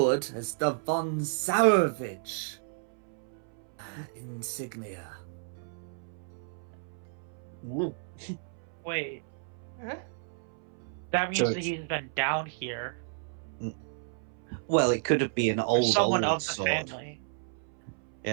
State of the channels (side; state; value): left; silent; 57 dB below the other